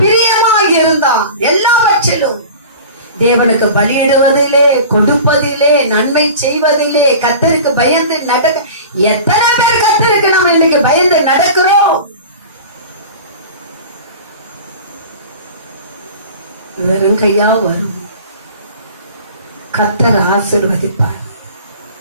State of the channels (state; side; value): inverted; both; correlation -0.38